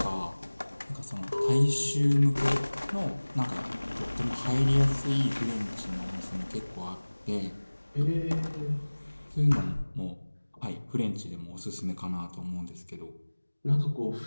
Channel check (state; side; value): inverted; both; correlation -1.00